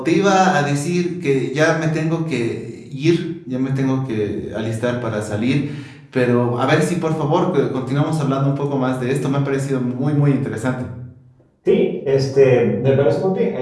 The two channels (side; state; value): both; identical; correlation 1.00